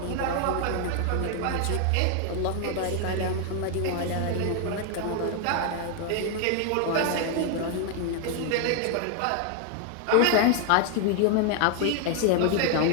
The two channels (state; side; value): different; both; correlation 0.00